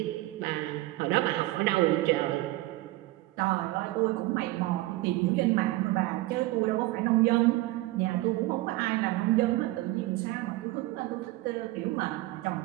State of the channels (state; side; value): quieter; left; 19.1 dB